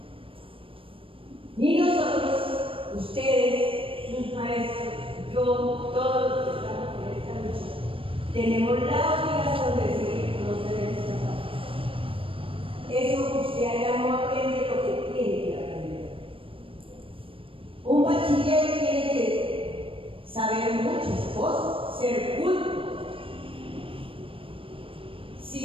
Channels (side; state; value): left; late; 0.26 ms